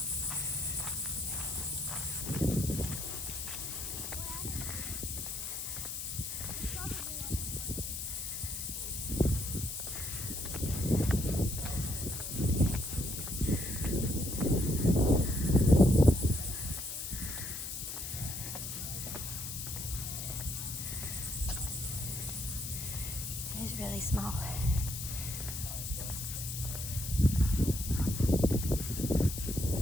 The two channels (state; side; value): noise; left; hiss, 6 dB below the sound